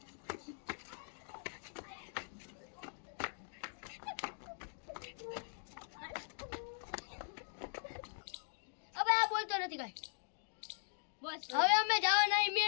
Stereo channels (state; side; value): silent; right; digital silence